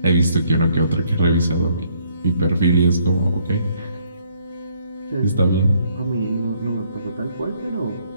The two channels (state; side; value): inverted; both; correlation -0.67